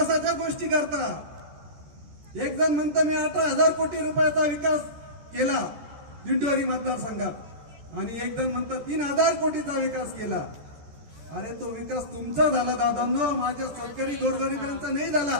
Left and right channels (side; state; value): left; late; 14 ms